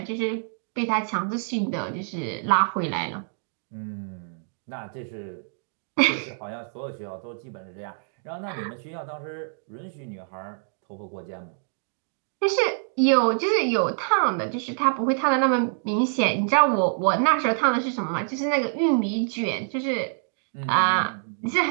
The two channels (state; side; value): silent; left; digital silence